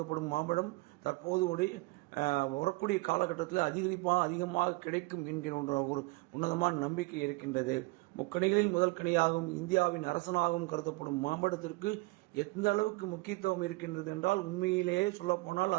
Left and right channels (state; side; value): quieter; left; 24.0 dB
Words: மாம்பழம் தற்போது வரக்கூடிய காலகட்டத்தில் அதிகமாக கிடைக்கும் என்கிற ஒரு உன்னதமான நம்பிக்கை இருக்கின்றது. முக்கணிகளில் முதல் கனியாகவும் இந்தியாவின் அரசனாகவும் கருதப்படும் மாம்பழத்திற்கு எந்த அளவுக்கு முக்கியத்துவம் இருக்கின்றது என்றால், உண்மையிலேயே சொல்லப்போனால்